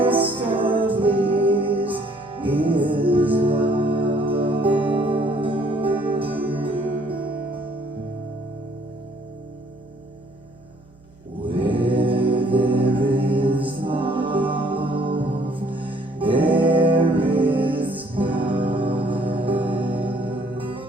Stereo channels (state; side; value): noise; right; hum, 27 dB below the sound